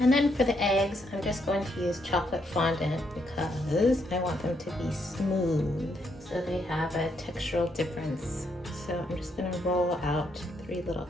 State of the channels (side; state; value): both; normal; correlation 0.76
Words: then for the eggs, I'm just going to use chocolate fondant because I want them to be smooth so they have a textural difference. So I'm just gonna roll out 3 little